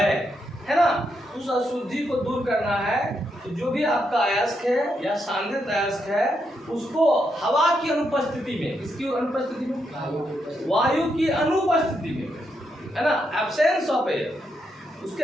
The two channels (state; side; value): normal; both; correlation 0.81